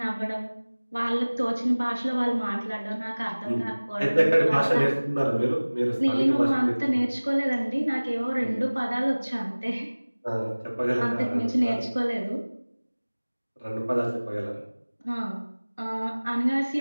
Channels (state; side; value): inverted; both; correlation -1.00